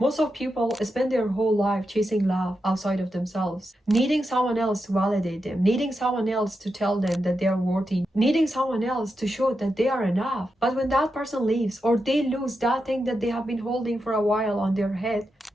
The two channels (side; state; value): both; normal; correlation 0.87